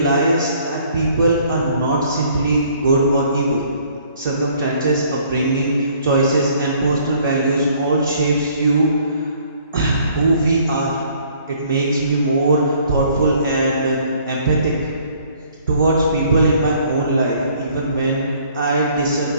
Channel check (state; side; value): inverted; both; correlation -0.60